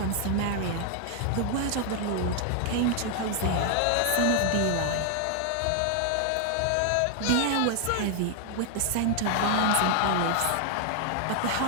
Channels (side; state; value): both; different; correlation 0.00